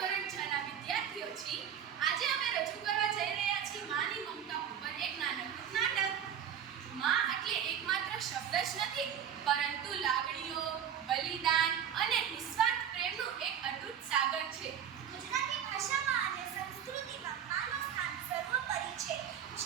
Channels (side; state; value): left; quieter; 8.9 dB